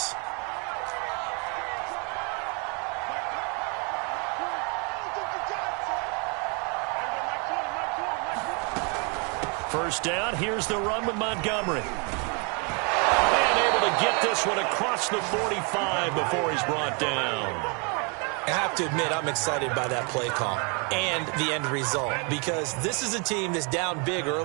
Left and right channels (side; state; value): left; quieter; 34.6 dB